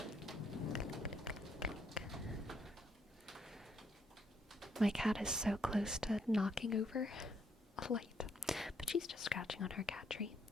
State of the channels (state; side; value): normal; both; correlation 0.72